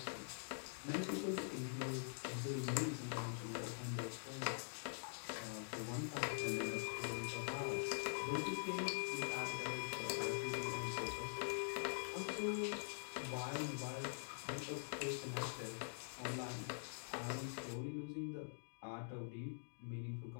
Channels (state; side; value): silent; right; digital silence